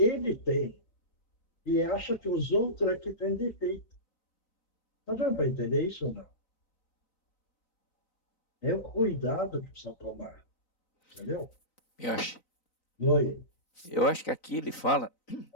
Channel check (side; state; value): right; late; 3.9 ms